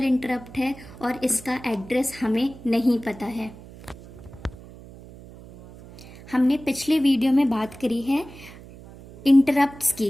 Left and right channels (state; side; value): noise; right; hum, 18 dB below the sound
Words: इंटरप्ट है और इसका एड्रेस हमें नहीं पता है। हमने पिछले वीडियो में बात करी है इंटरप्ट्स